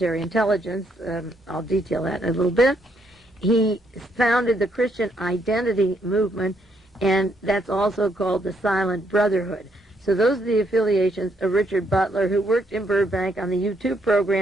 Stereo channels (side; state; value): both; normal; correlation 0.73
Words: intelligence. I'll detail that in a little bit. He founded the Christian Identity Movement, and that's also called the Silent Brotherhood. So those are the affiliations of Richard Butler, who worked in Burbank on the U2